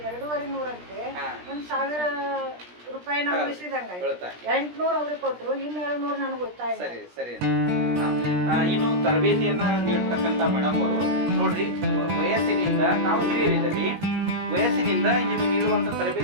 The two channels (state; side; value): late; left; 17 ms